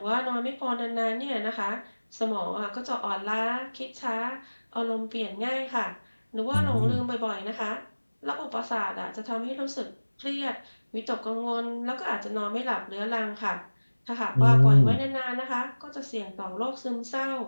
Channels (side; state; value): both; inverted; correlation -1.00